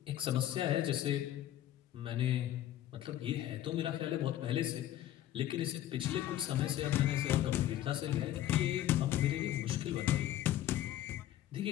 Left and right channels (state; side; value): quieter; right; 12.7 dB